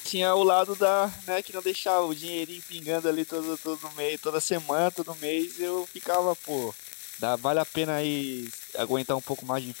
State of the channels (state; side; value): silent; right; digital silence